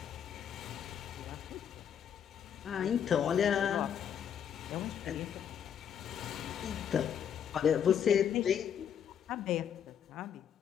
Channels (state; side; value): quieter; right; 8.6 dB